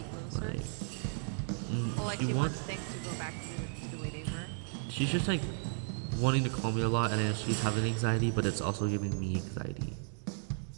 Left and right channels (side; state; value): left; silent; 55 dB below the other